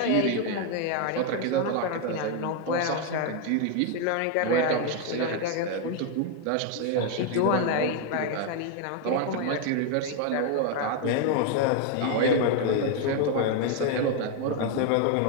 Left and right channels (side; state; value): both; different; correlation 0.01